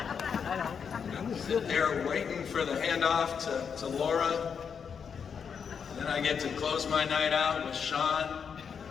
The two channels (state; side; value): quieter; right; 6.7 dB